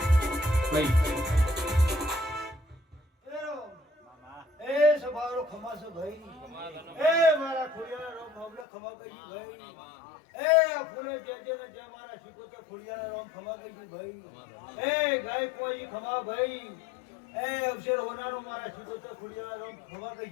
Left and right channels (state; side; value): drops out; right; at 8.7 s